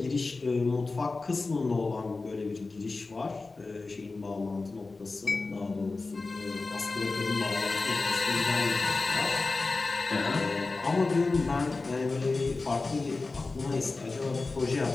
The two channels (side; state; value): right; quieter; 3.7 dB